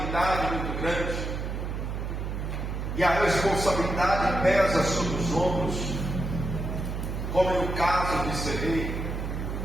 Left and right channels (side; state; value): right; noise; hum, 4 dB below the sound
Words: muito grande, e a responsabilidade pesa sobre os ombros, como no caso de ser rei,